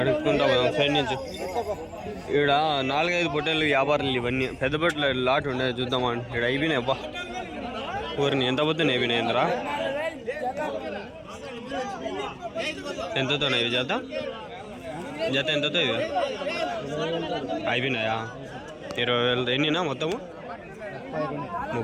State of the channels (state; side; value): identical; both; correlation 1.00